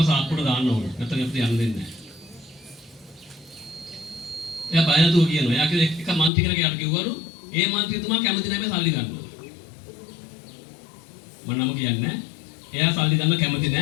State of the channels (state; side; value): drops out; right; at 6.3 s